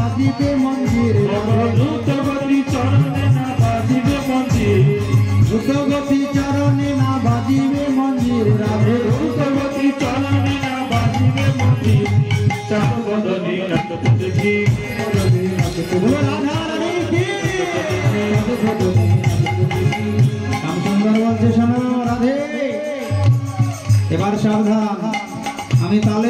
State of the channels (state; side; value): identical; both; correlation 1.00